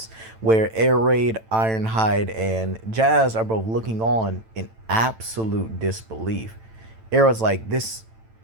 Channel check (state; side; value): late; left; 9.0 ms